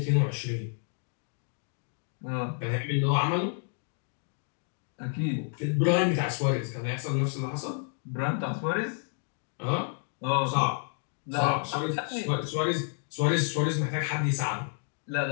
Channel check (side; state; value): right; silent; 58 dB below the other